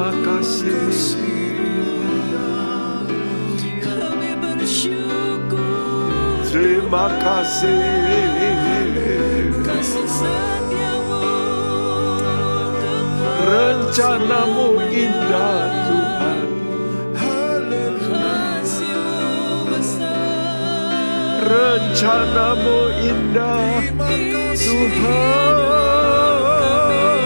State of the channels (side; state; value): both; inverted; correlation -1.00